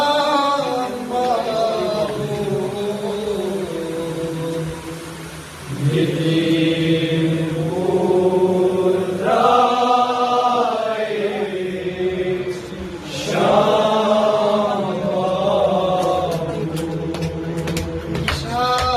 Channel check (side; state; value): both; identical; correlation 1.00